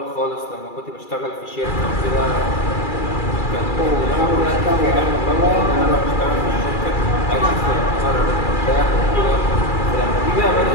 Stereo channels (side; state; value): right; late; 2.3 ms